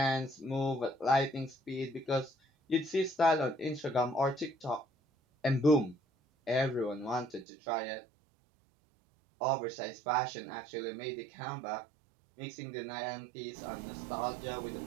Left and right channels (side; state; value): left; drops out; at 7.5 s